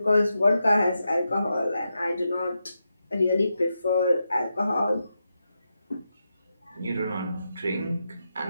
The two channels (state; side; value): inverted; both; correlation -0.87